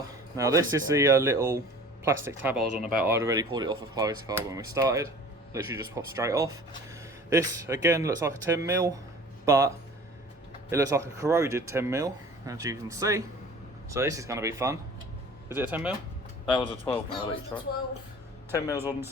Now this is the little plastic tab I was on about. I'd already pulled it off of Chloe's car when we started. Literally just popped straight off. This again looks like a 10mm, but it looks like a corroded 10mm, as you can see. So this is going to be fun. Is it a 10mm? That was a 12 That mil was each, the right? 12. 10 mils on the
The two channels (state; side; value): normal; both; correlation 0.44